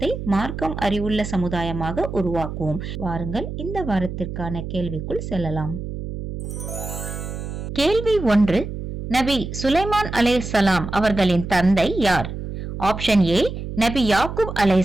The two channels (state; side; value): noise; right; hum, 7 dB below the sound